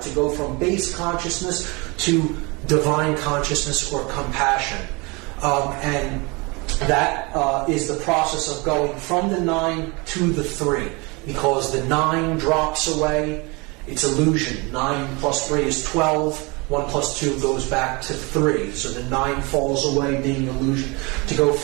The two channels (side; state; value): left; quieter; 27.4 dB